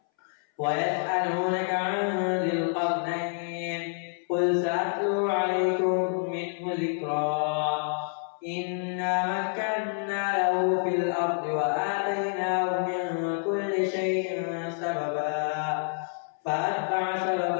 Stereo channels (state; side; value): silent; right; 59 dB below the other